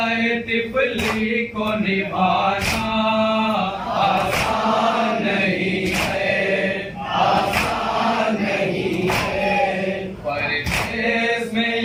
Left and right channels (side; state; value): both; identical; correlation 1.00